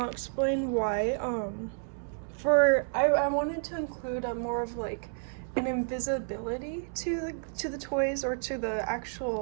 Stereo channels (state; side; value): silent; left; 55 dB below the other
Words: explain why. I wanted to include a more of like an invisibility to the toys, or to the